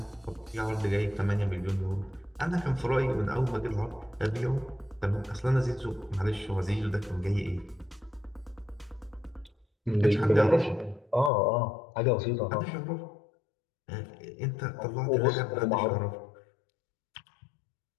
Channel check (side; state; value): right; drops out; at 11.3 s